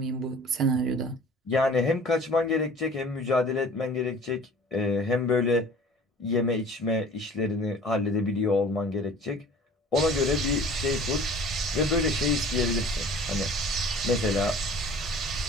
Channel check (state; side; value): normal; both; correlation 0.46